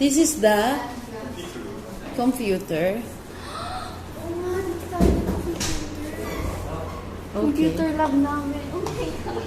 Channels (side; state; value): both; identical; correlation 1.00